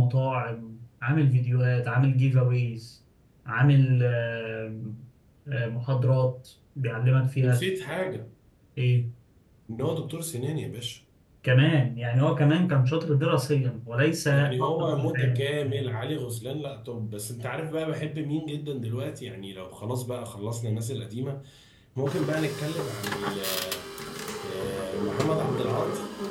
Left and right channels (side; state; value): both; identical; correlation 1.00